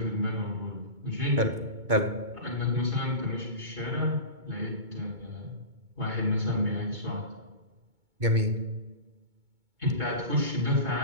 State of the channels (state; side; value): late; left; 2.2 ms